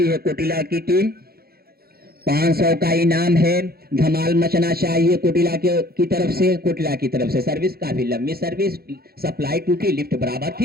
है कोटिला की टीम। 500 का इनाम है, धमाल मचना चाहिए कोटिला की तरफ से। कोटिला की तरफ से सर्विस, काफी लंबी सर्विस, सप्लाई टूटी, लिफ्ट बराबर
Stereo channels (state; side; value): late; left; 0.45 ms